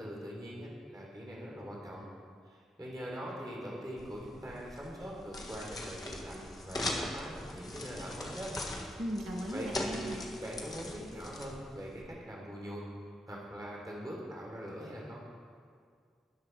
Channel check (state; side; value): normal; both; correlation 0.81